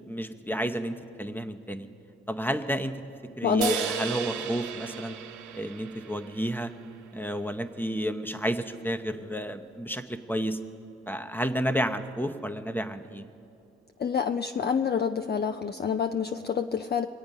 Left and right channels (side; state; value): both; normal; correlation 0.59